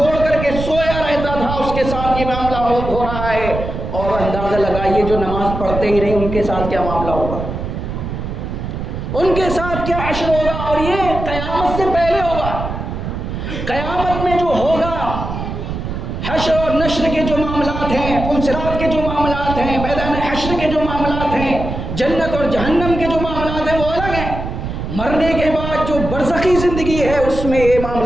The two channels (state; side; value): noise; right; rumble, 6 dB below the sound